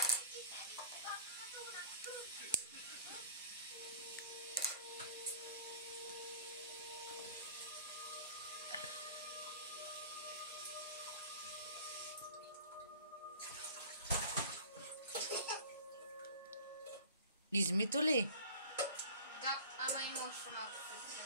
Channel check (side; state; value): both; inverted; correlation -0.43